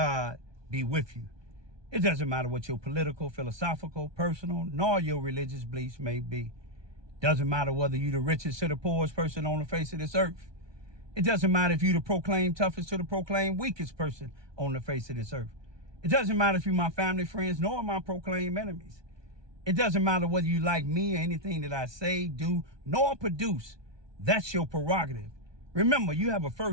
be with you. It doesn't matter what your political, philosophical, personal, nor your religious beliefs may be. Doesn't matter whether you're the richest or the poorest person on the face of this earth. It doesn't matter if you're the proclaimed toughest or the proclaimed weakest person on the face of this earth. It doesn't matter if you're my family, friends, nor my proclaimed enemies. It doesn't matter whether you like me or anything that I say, do, nor produce. That's your prerogative. Remember, you have a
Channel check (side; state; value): left; late; 1.2 ms